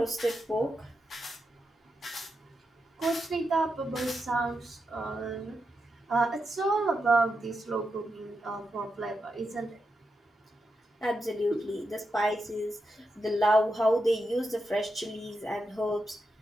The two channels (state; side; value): normal; both; correlation 0.86